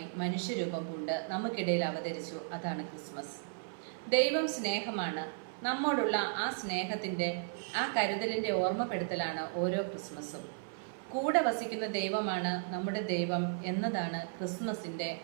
മനുഷ്യരൂപം കൊണ്ട് നമുക്കിടയിൽ അവതരിച്ചു. അതാണ് ക്രിസ്മസ്. ദൈവം സ്നേഹമാണ്. നമ്മോടുള്ള ആ സ്നേഹത്തിൻ്റെ, ആ കരുതലിൻ്റെ ഓർമ്മപ്പെടുത്തലാണ് ഓരോ ക്രിസ്മസും. കൂടെ വസിക്കുന്ന ദൈവമാണ് നമ്മുടെ ദൈവം എന്നതാണ് ക്രിസ്മസിൻ്റെ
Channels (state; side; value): silent; left; 54 dB below the other